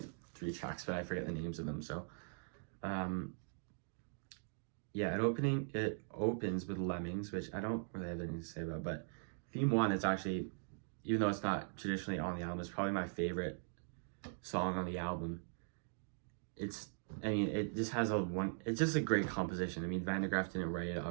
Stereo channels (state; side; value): silent; left; digital silence